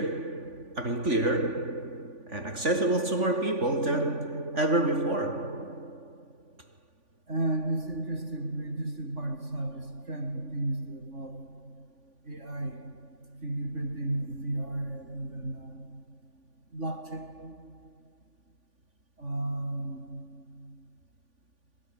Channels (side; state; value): left; late; 3.5 ms